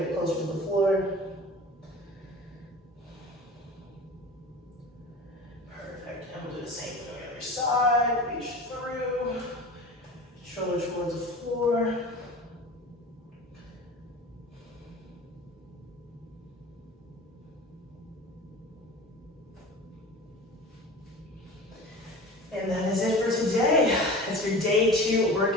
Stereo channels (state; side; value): normal; both; correlation 0.37